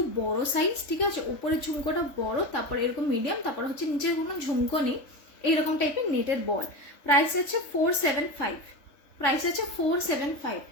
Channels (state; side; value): late; right; 3.5 ms